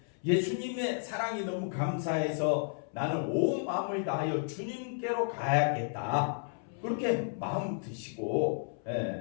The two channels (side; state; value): right; silent; 56 dB below the other